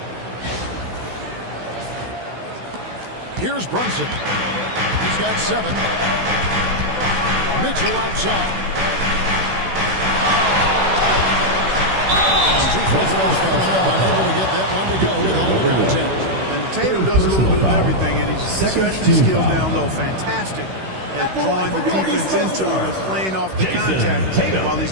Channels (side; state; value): left; late; 16 ms